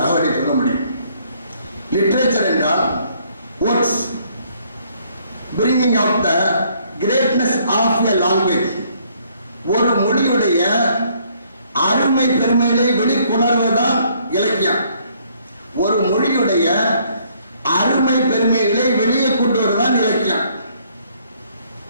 தகவலை சொல்ல முடியும். லிட்ரேச்சர் என்றால் words bringing out the greatness of a language. ஒரு மொழியுடைய அருமை பெருமைகளை வெளிக்கொணர்வதுதான் இலக்கியம். ஒரு மொழியுடைய அருமை பெருமைகளை வெளியே கொண்டு வருவதுதான் இலக்கியம்.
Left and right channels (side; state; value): both; inverted; correlation -0.65